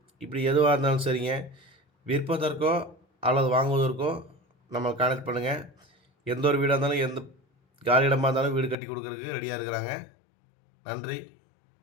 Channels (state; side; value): drops out; right; at 8.8 s